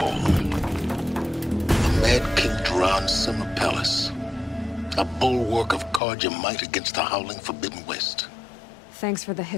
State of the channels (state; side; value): drops out; right; at 6.0 s